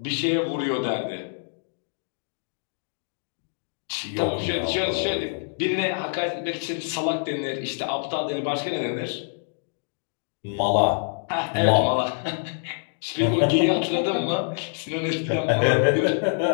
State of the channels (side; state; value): right; silent; 61 dB below the other